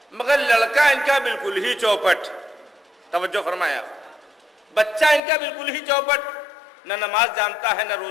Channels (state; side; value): drops out; right; at 5.2 s